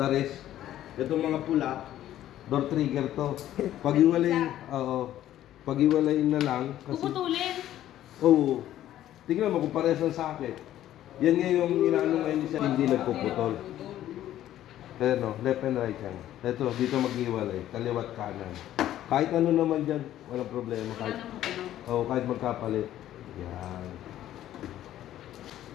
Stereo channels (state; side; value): quieter; right; 12.7 dB